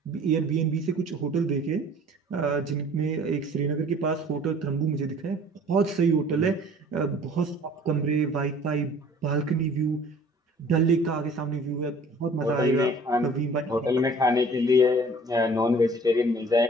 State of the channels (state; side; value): normal; both; correlation 0.50